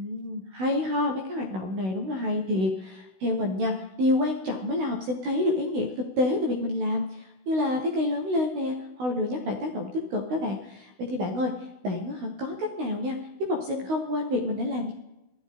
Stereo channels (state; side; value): late; left; 16 ms